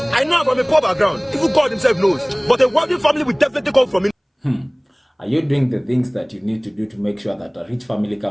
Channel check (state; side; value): identical; both; correlation 1.00